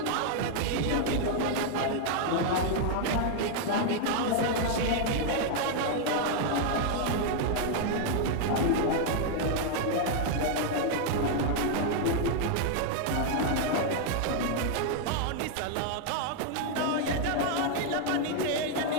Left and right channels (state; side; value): different; both; correlation 0.00